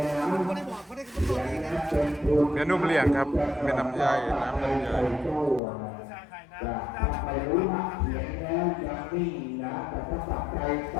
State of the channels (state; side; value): drops out; right; at 5.6 s